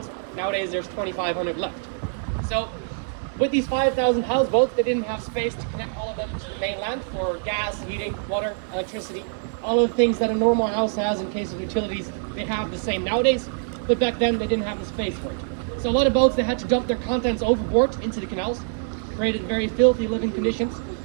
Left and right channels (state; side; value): silent; left; digital silence